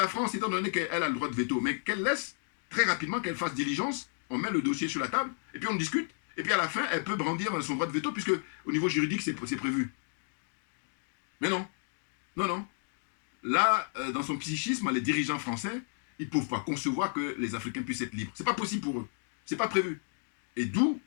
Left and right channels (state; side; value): silent; right; 56 dB below the other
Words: France, étant donné qu'elle a le droit de veto, mais qu'elle laisse très rapidement, qu'elle fasse diligence, on met le dossier sur la table, et puis on discute, et puis à la fin, elle peut brandir son droit de veto, puisque au niveau juridique, c'est prévu. Mais non, non. Là, dans son psychisme, les dirigeants français, ils ne peuvent pas concevoir que les Africains puissent être libres. Ce n'est pas possible pour eux. Ce n'est pas prévu. Et d'où,